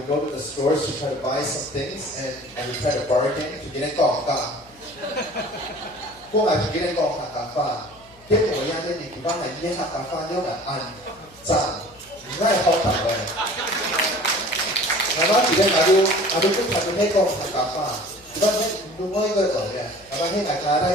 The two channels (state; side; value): noise; left; hum, 27 dB below the sound